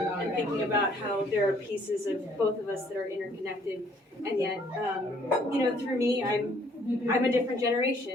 thinking about how there are pieces of both of us that are interconnected, and yet through me I'm a different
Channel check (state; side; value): normal; both; correlation 0.62